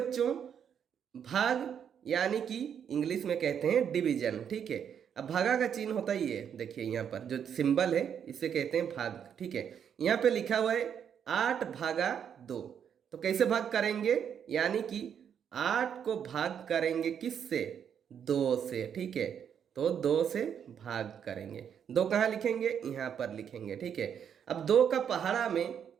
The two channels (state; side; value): quieter; left; 8.2 dB